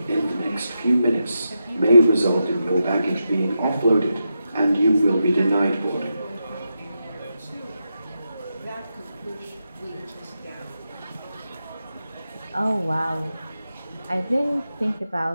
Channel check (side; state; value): both; inverted; correlation -0.87